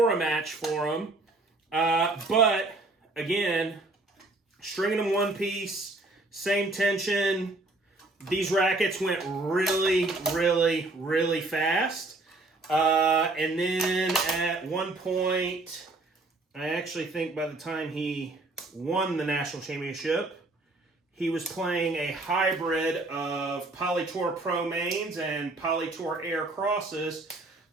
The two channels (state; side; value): quieter; left; 3.0 dB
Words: a match for him. But again, stringing them one piece, same tension. These rackets went really fast. And then at one point, I actually think by the time he won the national championship, he was playing a hybrid of Poly Tour Pro mains and Poly Tour Air crosses.